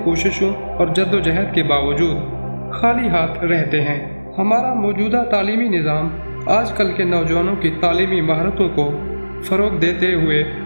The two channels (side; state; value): both; inverted; correlation -1.00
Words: कोशिशों और जद्दोजहद के बावजूद खाली हाथ रहते हैं। हमारा मौजूदा तालीमी निज़ाम आजकल के नौजवानों की तालीमी महारतों को फ़रोग़ देते हुए